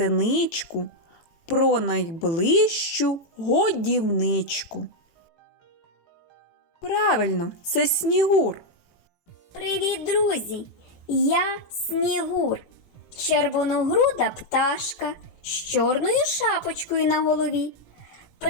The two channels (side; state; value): right; late; 18 ms